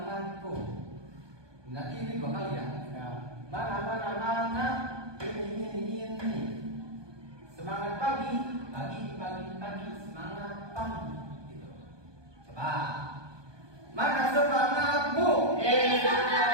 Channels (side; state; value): left; late; 1.2 ms